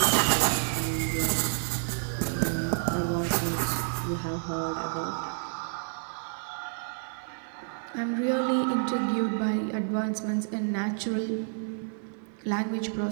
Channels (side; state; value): left; silent; 58 dB below the other